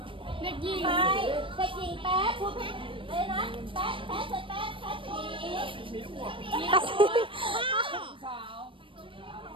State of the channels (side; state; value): left; late; 0.25 ms